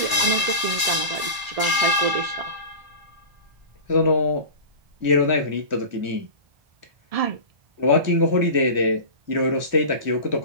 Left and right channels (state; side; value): late; left; 1.0 ms